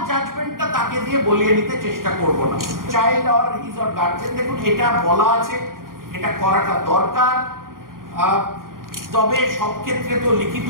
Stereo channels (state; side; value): late; left; 0.91 ms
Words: জাজমেন্টটা তাকে দিয়ে বলিয়ে নিতে চেষ্টা করব না। Child or his or guardian, দেখুন এটা বলা আছে, এটা করাটা দরকার। তবে সব ক্ষেত্রে তো লিখিত